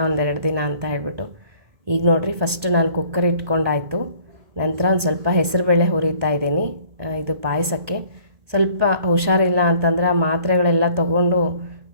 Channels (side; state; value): left; late; 1.8 ms